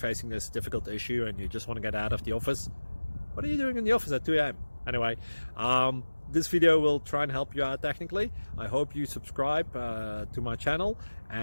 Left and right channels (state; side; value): inverted; both; correlation -1.00